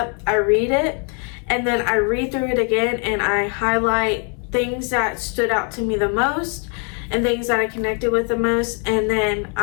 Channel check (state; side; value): quieter; right; 39.2 dB